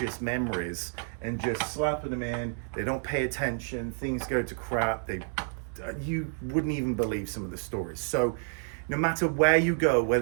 memories and just slapping them in. They don't pay attention, things go to crap. You wouldn't even believe some of the stories. So no matter where you go,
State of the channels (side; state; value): left; silent; 58 dB below the other